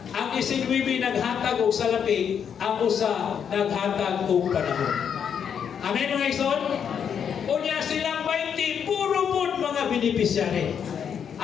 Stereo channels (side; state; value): right; quieter; 7.8 dB